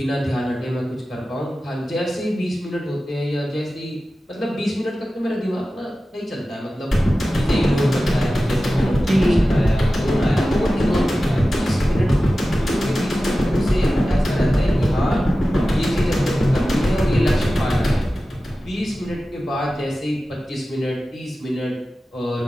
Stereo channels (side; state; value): both; normal; correlation 0.95